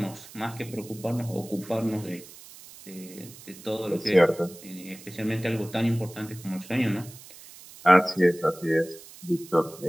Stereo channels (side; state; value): right; noise; hiss, 18 dB below the sound